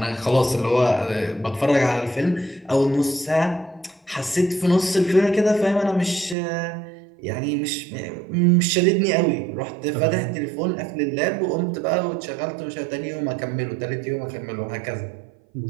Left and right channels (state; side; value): drops out; left; at 6.4 s